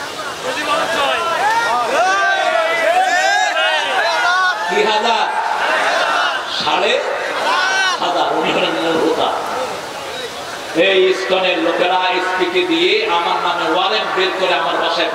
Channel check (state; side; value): identical; both; correlation 1.00